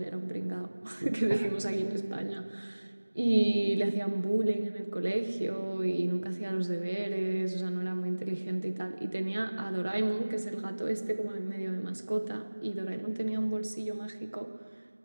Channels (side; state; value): both; inverted; correlation -1.00